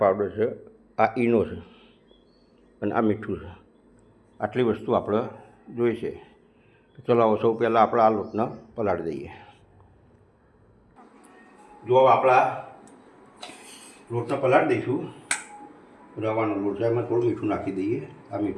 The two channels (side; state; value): both; identical; correlation 1.00